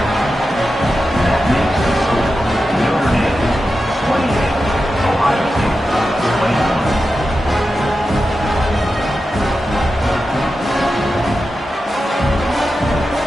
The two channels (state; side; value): normal; both; correlation 0.91